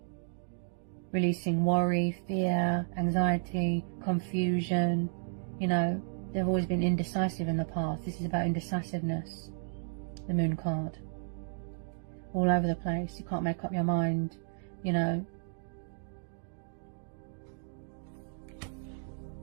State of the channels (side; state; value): left; silent; digital silence